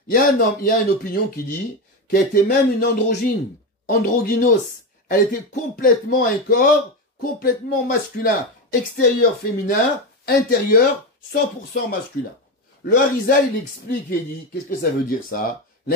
Il y a une opinion qui dit qu'elle était même une androgyne, androgynos. Elle était complètement un corps, complètement masculin. Extérieur féminin, intérieur 100% masculin. Le Harizal, il explique et il dit, qu'est-ce que ça veut dire ça?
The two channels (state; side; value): normal; both; correlation 0.15